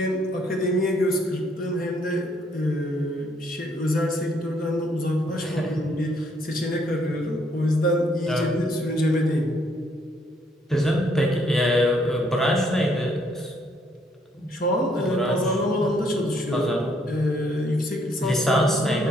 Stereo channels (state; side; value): normal; both; correlation 0.68